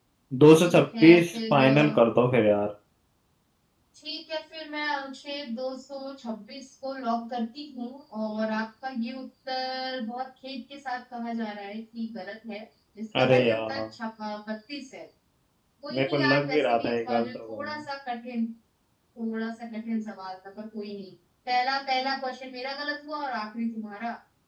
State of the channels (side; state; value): both; identical; correlation 1.00